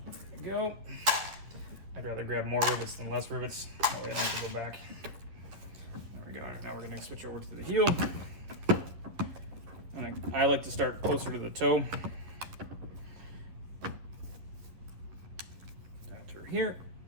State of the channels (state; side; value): late; left; 11 ms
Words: we go. I'd rather grab more rivets than less rivets. That way I don't have to go back. There we go. Now we're going to switch over to the heel. I like to start closer to the toe. Down through here.